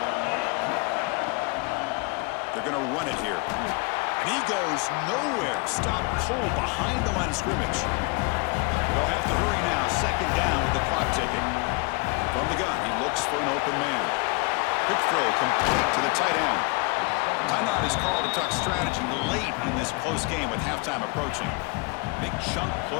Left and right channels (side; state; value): right; quieter; 28.8 dB